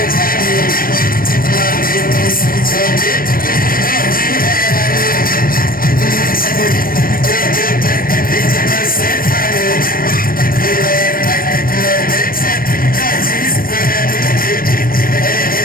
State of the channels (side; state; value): right; late; 0.42 ms